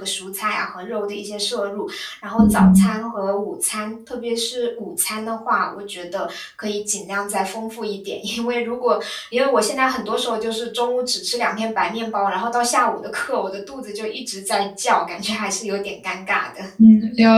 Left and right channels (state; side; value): identical; both; correlation 1.00